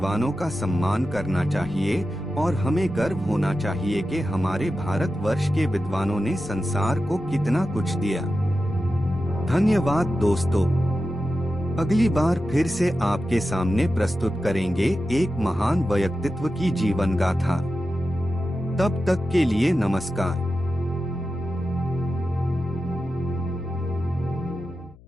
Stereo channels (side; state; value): left; noise; hum, 24 dB below the sound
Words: का सम्मान करना चाहिए और हमें गर्व होना चाहिए कि हमारे भारतवर्ष के विद्वानों ने संसार को कितना कुछ दिया। धन्यवाद दोस्तों। अगली बार फिर से आपके सामने प्रस्तुत करेंगे एक महान व्यक्तित्व की जीवन गाथा। तब तक के लिए नमस्कार।